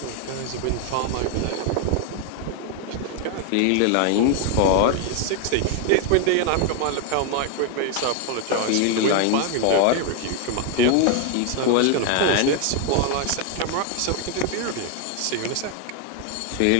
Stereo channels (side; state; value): both; different; correlation 0.01